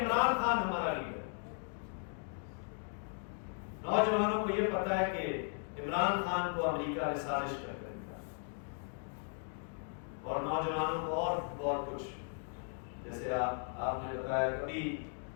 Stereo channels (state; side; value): silent; right; 53 dB below the other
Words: خان ہمارا لیڈر، نوجوانوں کو یہ پتا ہے کہ عمران خان کو امریکہ نے سازش کر کے رکھا، اور نوجوانوں کو اور بہت کچھ، جیسے آپ نے بتایا کبھی